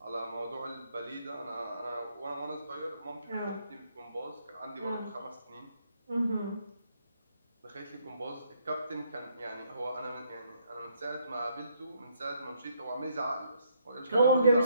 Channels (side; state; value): both; inverted; correlation -0.71